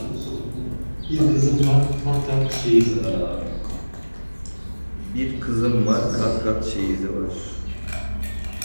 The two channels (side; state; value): both; inverted; correlation -1.00